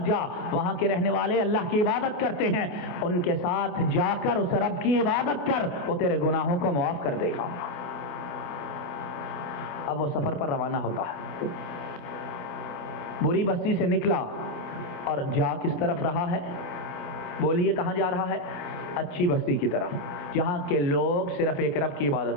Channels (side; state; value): right; late; 28 ms